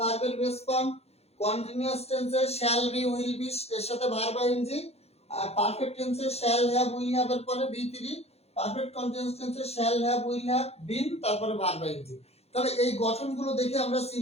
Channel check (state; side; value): late; right; 0.30 ms